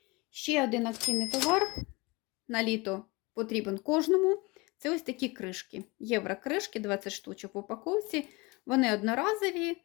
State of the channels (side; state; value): right; quieter; 24.9 dB